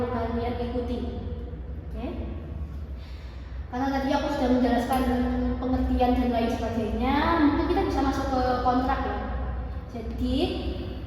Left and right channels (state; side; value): identical; both; correlation 1.00